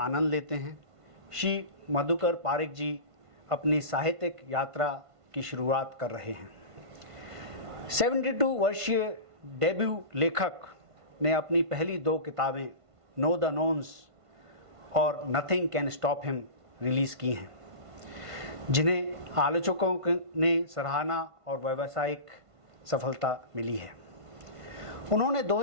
लेते हैं, श्री मधुकर पारिक जी अपनी साहित्यिक यात्रा की शुरुआत कर रहे हैं। 72 वर्षीय डेब्यू लेखक ने अपनी पहली 2 किताबें नो द नोन्स और nothing can stop him release की हैं, जिन्हें आलोचकों ने सराहना और व्यावसायिक सफलता मिली है। उन्होंने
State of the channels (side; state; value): left; late; 1.5 ms